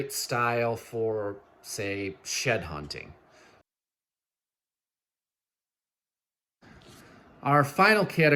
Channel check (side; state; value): both; identical; correlation 1.00